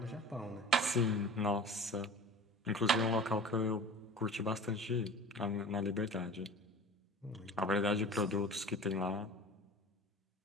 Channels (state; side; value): normal; both; correlation 0.39